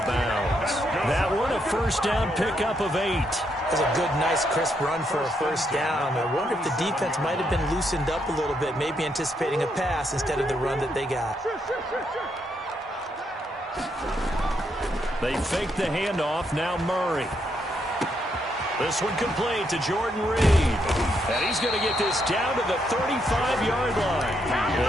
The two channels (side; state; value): both; normal; correlation 0.77